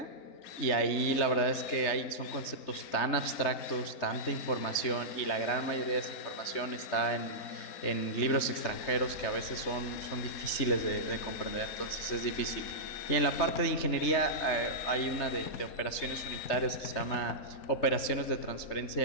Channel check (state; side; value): late; right; 3.3 ms